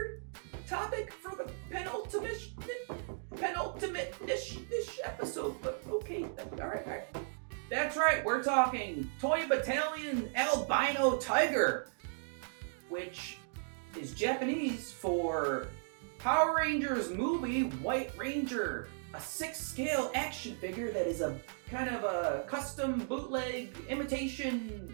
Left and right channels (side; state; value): left; silent; digital silence